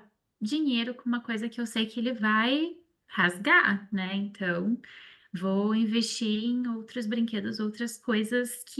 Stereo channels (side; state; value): both; identical; correlation 1.00